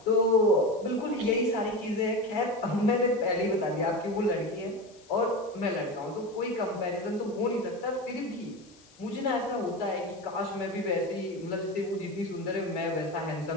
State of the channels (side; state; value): left; noise; hiss, 26 dB below the sound